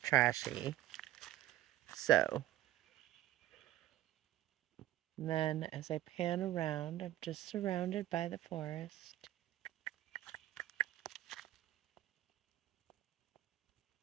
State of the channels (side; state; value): left; quieter; 14.2 dB